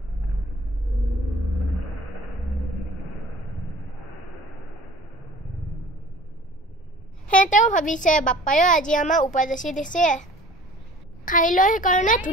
সিহঁতেও ভাবিছে বাপ্পায়ো আজি আমাৰ উপজাচি দিছে খাই লৈ সেইকাৰণে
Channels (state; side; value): normal; both; correlation 0.46